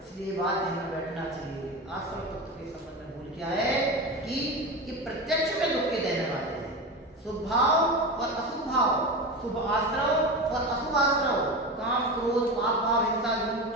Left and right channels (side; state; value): both; normal; correlation 0.24